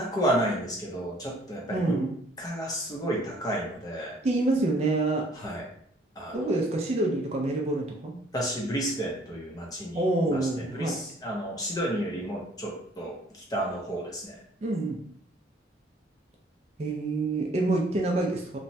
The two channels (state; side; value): normal; both; correlation 0.59